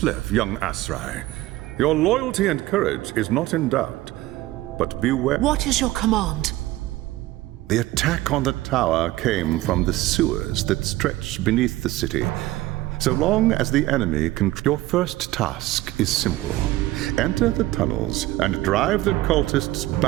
young Asrai. Your loyalty and courage is not in doubt, but beware... What is your command? The attack on the tower came from the sewers that stretch beneath the city. So long as the enemy can... Your first task is simple. Enter the tunnels and drive the cultists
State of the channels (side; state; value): left; quieter; 17.0 dB